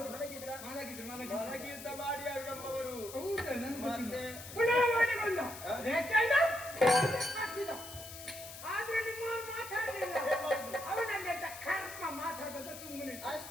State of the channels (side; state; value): left; noise; hiss, 12 dB below the sound